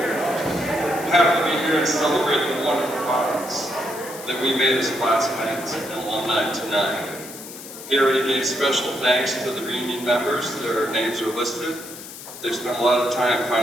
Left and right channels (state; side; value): noise; left; hiss, 13 dB below the sound